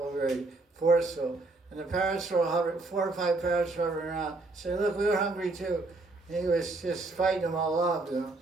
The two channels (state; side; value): quieter; left; 3.2 dB